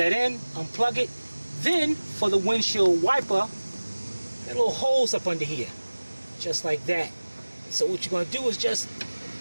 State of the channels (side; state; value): both; inverted; correlation -1.00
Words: in, unplug it. Then, for the windshield wiper, that little holes up under here. Just like that. So what you're gonna do is just